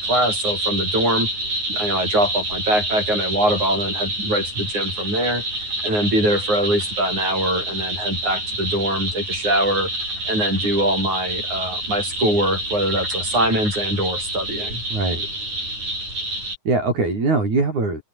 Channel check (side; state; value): left; late; 9.6 ms